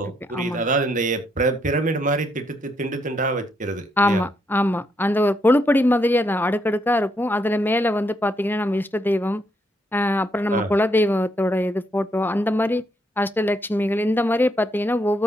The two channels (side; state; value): both; normal; correlation 0.76